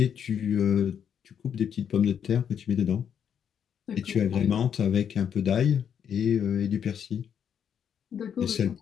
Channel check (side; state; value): right; quieter; 8.2 dB